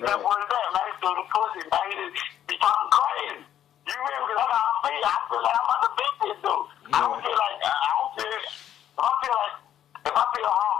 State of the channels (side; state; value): right; quieter; 10.7 dB